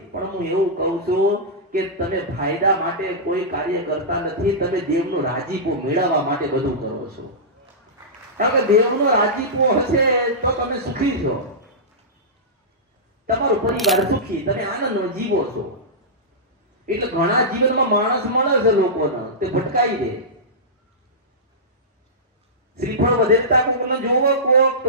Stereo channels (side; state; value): both; normal; correlation -0.15